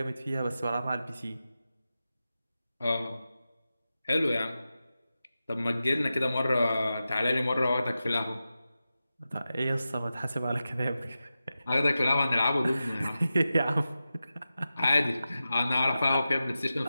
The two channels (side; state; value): both; inverted; correlation -0.93